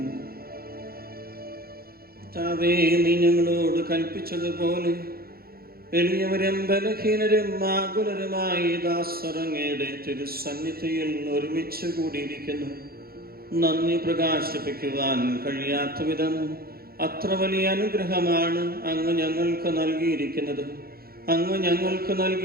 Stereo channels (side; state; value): left; late; 0.44 ms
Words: താവേ, നീ ഞങ്ങളോട് കൽപ്പിച്ചതുപോലെ എളിയവരും ബലഹീനരും ആകുലരുമായി ദാസറങ്ങയുടെ തിരുസന്നിധിയിൽ ഒരുമിച്ച് കൂടിയിരിക്കുന്നു. നന്ദി പ്രകാശിപ്പിക്കുവാൻ കഴിയാത്ത വിധം അത്ര വലിയ അനുഗ്രഹമാണ് അങ്ങ് ഞങ്ങൾക്ക് നൽകിയിരിക്കുന്നത്. അങ്ങ് ഞങ്ങൾക്ക്